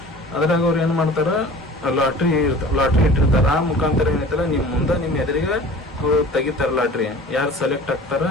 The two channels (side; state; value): both; normal; correlation 0.43